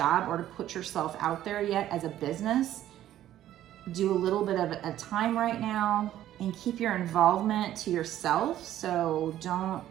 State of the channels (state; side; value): quieter; left; 12.5 dB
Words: or to put yourself out there yet as a business. Do a little bit of a time right now and keep your involvement to yourself. So don't